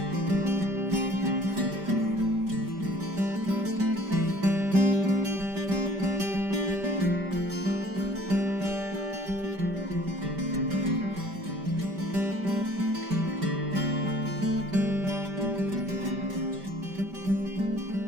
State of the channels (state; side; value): late; left; 5.1 ms